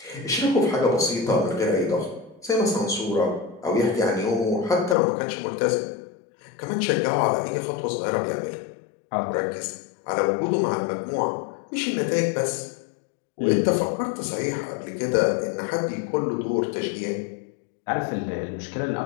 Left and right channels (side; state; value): right; drops out; at 5.0 s